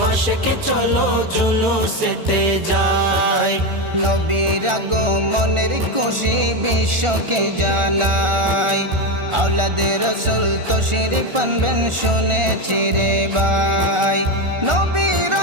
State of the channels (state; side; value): late; left; 1.4 ms